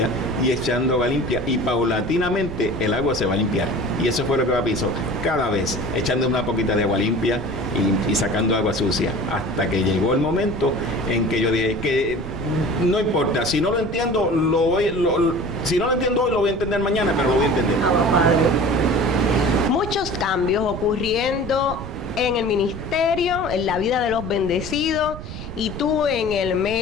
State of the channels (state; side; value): noise; right; rumble, 10 dB below the sound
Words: y echando agua limpia, y paulatinamente el agua se va a limpiar. Y eso fue lo que papi hizo, cada vez echando una poquita de agua limpia y sacando agua sucia, hasta que llegó el momento en que yo dije que no importa, si no lo entiendo, si no lo entiendo hoy, lo voy a entender mañana, pero lo voy a entender. Muchos cambios ocurriendo en el ministerio, en la vida de los bendecidos, y tú en el